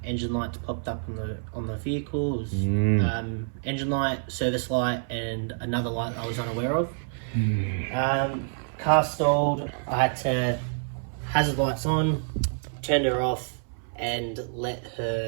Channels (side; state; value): left; silent; 60 dB below the other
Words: engine lights popped up on the vehicle. It was, engine light, service light, and another light I was unaware of. Car stalled. I had to hazard lights on, turned her off, and let